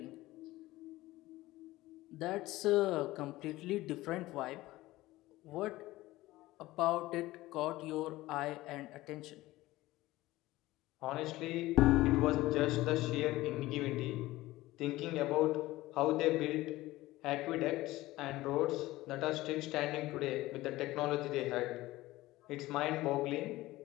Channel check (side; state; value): right; quieter; 17.8 dB